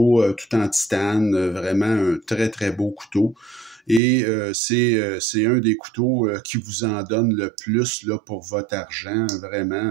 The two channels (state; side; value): drops out; left; at 4.0 s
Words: tout en titane, vraiment un très très beau couteau. Et c'est un des couteaux qui vous en donne le plus là, pour votre argent,